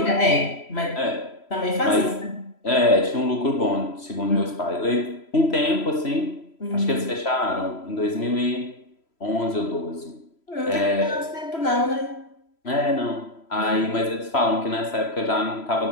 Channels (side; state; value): right; late; 3.0 ms